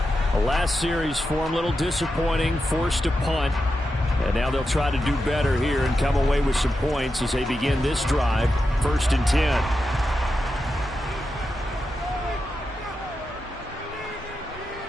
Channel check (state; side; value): normal; both; correlation 0.89